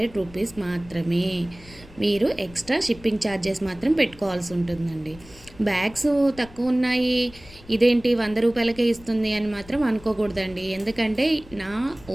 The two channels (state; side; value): noise; left; rumble, 21 dB below the sound